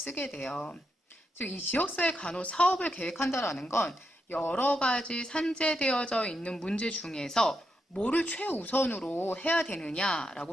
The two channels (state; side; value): normal; both; correlation 0.83